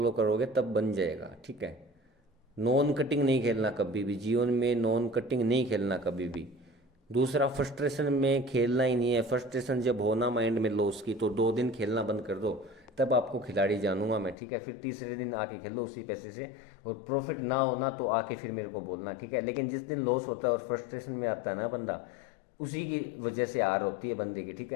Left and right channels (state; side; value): drops out; right; at 14.4 s